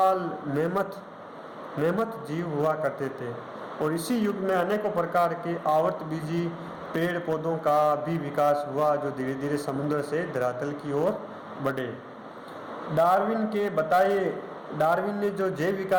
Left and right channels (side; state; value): both; identical; correlation 1.00